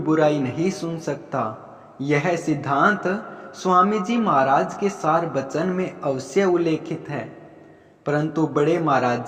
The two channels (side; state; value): both; identical; correlation 1.00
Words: नहीं सुन सकता। यह सिद्धांत स्वामी जी महाराज के सार वचन में अवश्य उल्लेखित है। परंतु बड़े महाराज